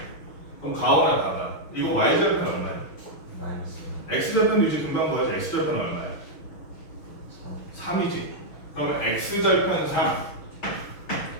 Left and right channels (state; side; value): late; right; 6.3 ms